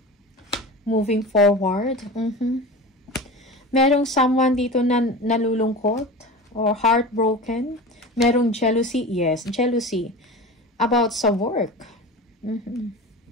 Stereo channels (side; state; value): both; normal; correlation 0.32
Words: Moving forward, merong someone dito na nalulungkot or heartbroken. Merong jealousy, yes, jealousy about sa work.